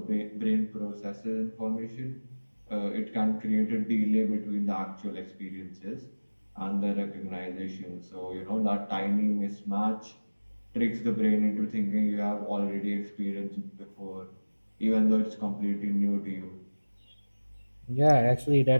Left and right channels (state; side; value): inverted; both; correlation -1.00